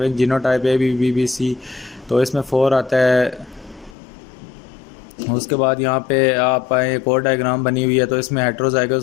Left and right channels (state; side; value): drops out; right; at 4.0 s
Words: genotype A B B B C, तो इसमें 4 आता है। उसके बाद यहाँ पे आप आए, एक और डायग्राम बनी हुई है, तो इसमें